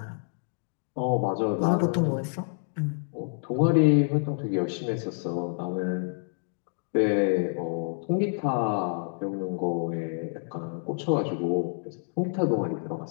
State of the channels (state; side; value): silent; right; 59 dB below the other